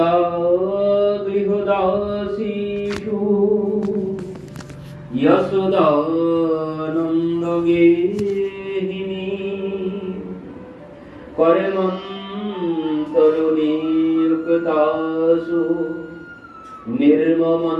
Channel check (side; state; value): both; identical; correlation 1.00